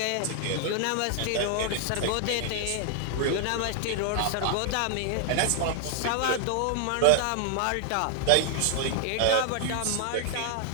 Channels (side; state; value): both; different; correlation 0.00